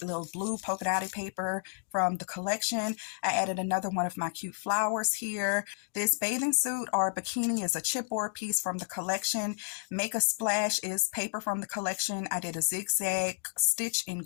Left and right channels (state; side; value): silent; right; 57 dB below the other